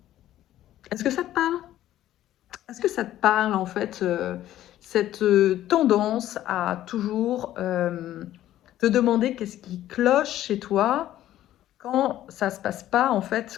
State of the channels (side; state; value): right; quieter; 13.2 dB